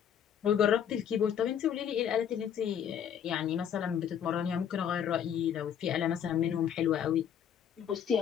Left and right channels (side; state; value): right; quieter; 8.7 dB